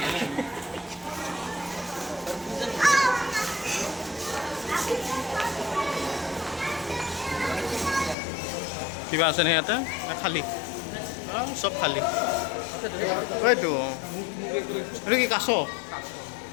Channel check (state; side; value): drops out; right; at 8.2 s